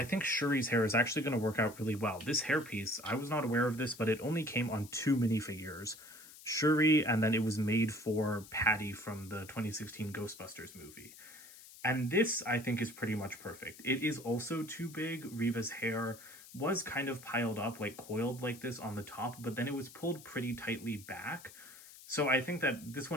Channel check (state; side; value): noise; left; hiss, 18 dB below the sound